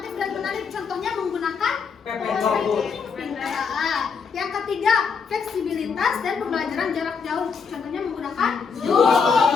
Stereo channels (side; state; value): right; quieter; 5.7 dB